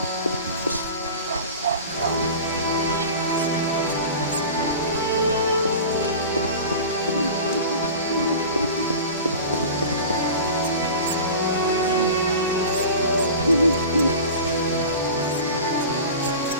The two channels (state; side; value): inverted; both; correlation -0.35